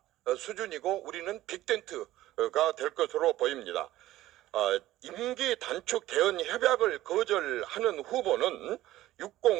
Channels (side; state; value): left; quieter; 15.3 dB